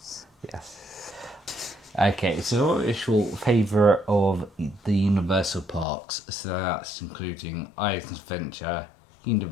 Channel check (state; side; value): drops out; right; at 5.9 s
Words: Yes. Okay, so what is your favourite of the Universal parks? So that's including Islands Adventure,